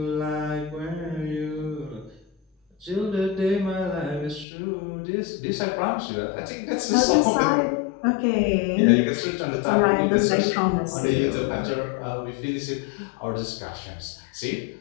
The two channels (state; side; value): drops out; right; at 4.5 s